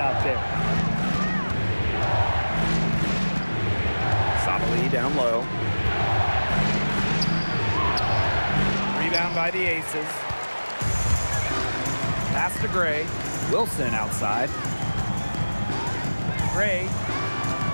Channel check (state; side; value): inverted; both; correlation -1.00